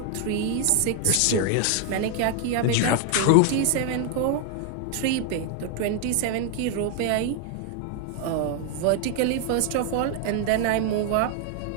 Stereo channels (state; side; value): different; both; correlation 0.00